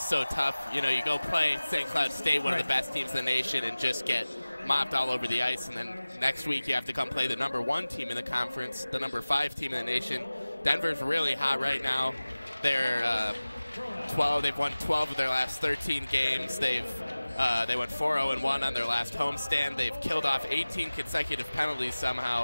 so tough. You know, you go play St. Cloud State, one of the best teams in the nation, and just get mopped all over the ice. And then next week you have to come play the number 1 team in the conference, the number 5 team in the nation. Denver's really hot right now. They're 12. They've won 12 of their last 13 games. They went 4-0-1 on their last homestand. They've killed off 18 consecutive penalties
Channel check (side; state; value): both; inverted; correlation -0.98